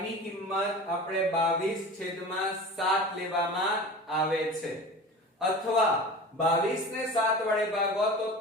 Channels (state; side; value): normal; both; correlation 0.35